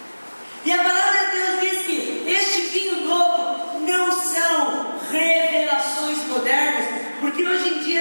E a palavra de Deus diz que este vinho novo não são revelações modernas, porque hoje em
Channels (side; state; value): both; inverted; correlation -1.00